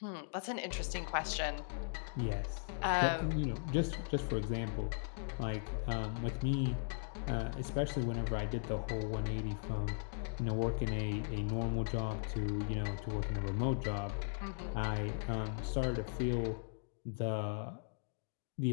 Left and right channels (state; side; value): silent; right; digital silence